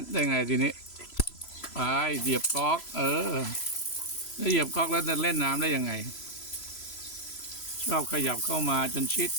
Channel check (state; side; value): late; right; 3.0 ms